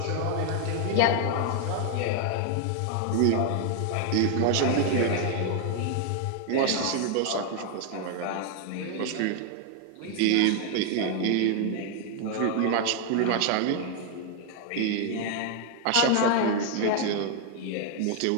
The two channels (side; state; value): both; different; correlation 0.00